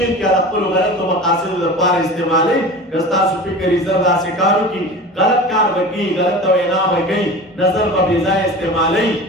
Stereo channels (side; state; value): both; normal; correlation 0.35